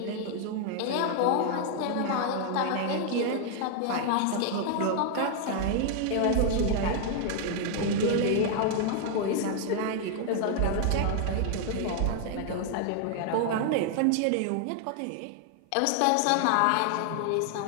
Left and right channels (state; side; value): different; both; correlation 0.00